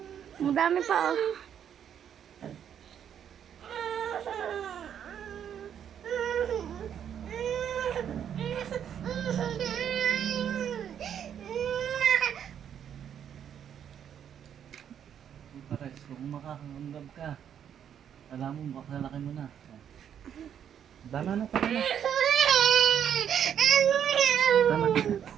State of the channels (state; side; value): quieter; left; 9.0 dB